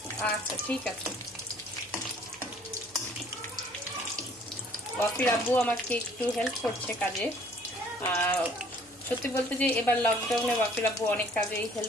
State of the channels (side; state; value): left; noise; hum, 28 dB below the sound